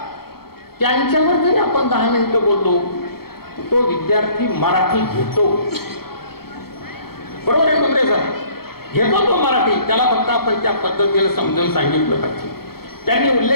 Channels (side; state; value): right; late; 0.95 ms